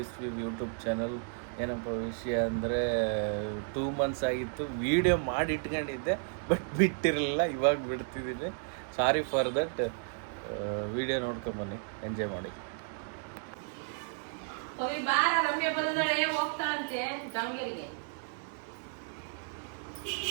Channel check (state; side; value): silent; left; 56 dB below the other